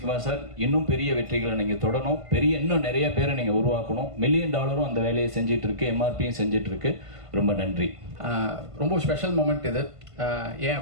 சார், இன்னும் பெரிய வெற்றிகளை நீங்கள் தொடரணும், இன்னும் நிறைய பேரை நீங்கள் உருவாக்கணும். $1 மில்லியன் அந்த வேலையை செஞ்சிட்டு இருக்கு, எம்ஆர்பியும் செஞ்சிட்டு இருக்கு. ரொம்ப நன்றி. ரொம்ப ஸ்பெஷல் மூமெண்ட் இது. ஏன்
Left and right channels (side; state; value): left; late; 1.5 ms